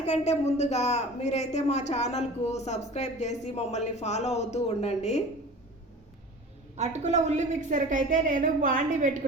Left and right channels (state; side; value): normal; both; correlation 0.39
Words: ముందుగా మీరైతే మా ఛానల్కు సబ్స్క్రైబ్ చేసి మమ్మల్ని ఫాలో అవుతూ ఉండండి. అటుకుల ఉల్లి మిక్సర్కి అయితే నేను బాండి